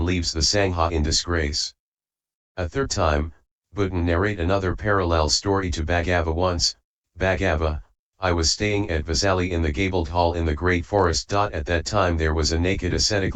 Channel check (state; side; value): identical; both; correlation 1.00